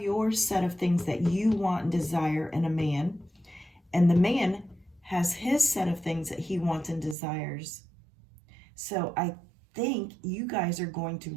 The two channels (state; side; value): drops out; left; at 7.2 s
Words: your set of things that you want and desire in a man, and the man has his set of things that he wants and desires. So I think you guys are going